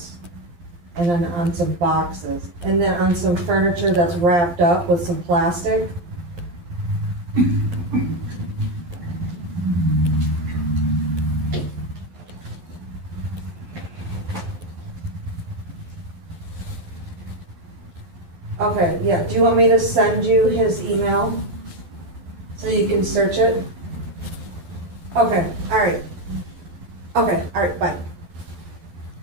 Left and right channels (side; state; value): left; late; 12 ms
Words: And then on some boxes, and then on some furniture that's wrapped up with some plastic. Okay, yeah, do you want me to send you his email so you can search it? Okay, alright. Okay, alright, bye.